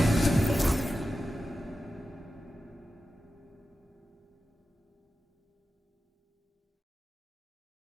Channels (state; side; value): normal; both; correlation 0.92